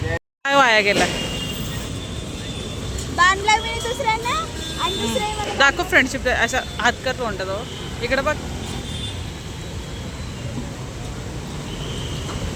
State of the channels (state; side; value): identical; both; correlation 1.00